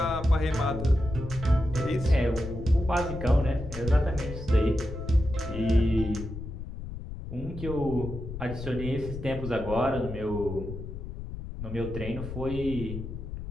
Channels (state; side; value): noise; left; rumble, 8 dB below the sound